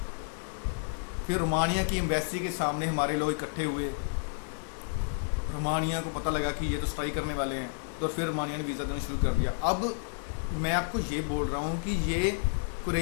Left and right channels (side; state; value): right; silent; 57 dB below the other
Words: फिर रोमानिया की एम्बेसी के सामने हमारे लोग इकट्ठे हुए, रोमानिया को पता लगा कि ये तो स्ट्राइक करने वाले हैं, तो फिर रोमानिया ने वीज़ा देना शुरू कर दिया। अब मैं आपको ये बोल रहा हूँ कि ये